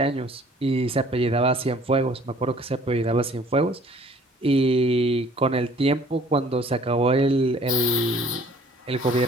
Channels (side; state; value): both; normal; correlation 0.54